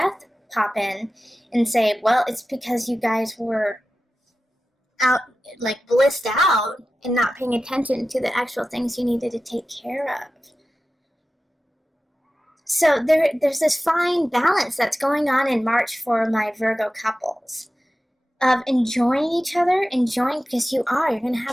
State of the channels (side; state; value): both; normal; correlation 0.94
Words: pop in and say, well, it's because you guys were out, like blissed out and not paying attention to the actual things you needed to take care of. So there's this fine balance that's going on in March for my Virgo couples of enjoying each other, because you're going to